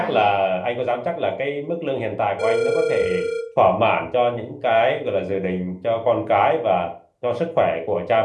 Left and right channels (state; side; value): identical; both; correlation 1.00